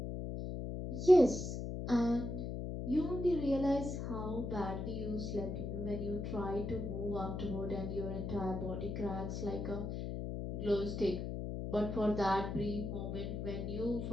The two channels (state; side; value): noise; left; hum, 4 dB below the sound